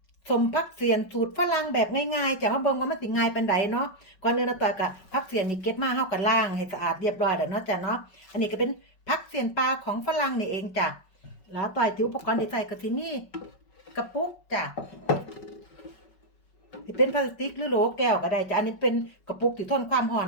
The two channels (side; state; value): right; late; 5.3 ms